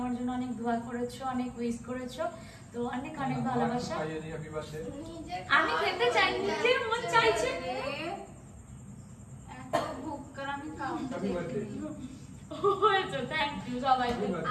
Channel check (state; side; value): identical; both; correlation 1.00